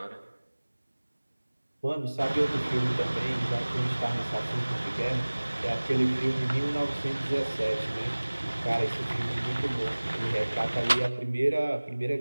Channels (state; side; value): inverted; both; correlation -1.00